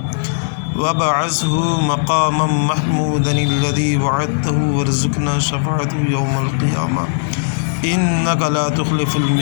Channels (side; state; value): right; silent; digital silence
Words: وبعثه مقاما محمودا الذي وعدته وارزقنا شفاعته يوم القيامة إنك لا تخلف